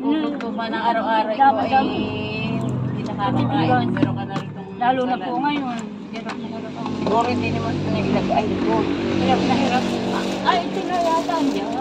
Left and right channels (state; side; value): identical; both; correlation 1.00